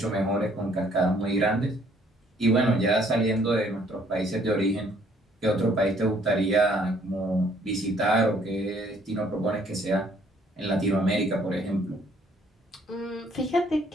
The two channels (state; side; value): normal; both; correlation 0.63